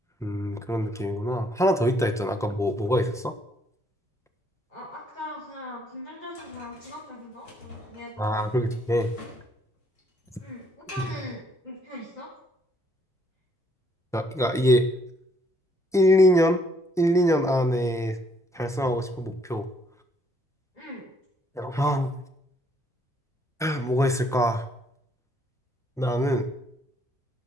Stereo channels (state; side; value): normal; both; correlation 0.68